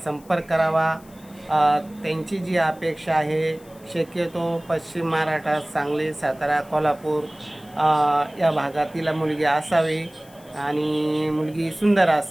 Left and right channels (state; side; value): noise; left; hiss, 26 dB below the sound